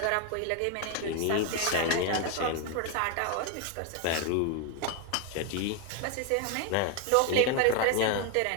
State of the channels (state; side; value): different; both; correlation 0.01